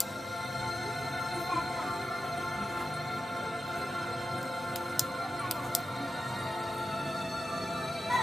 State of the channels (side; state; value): both; normal; correlation 0.91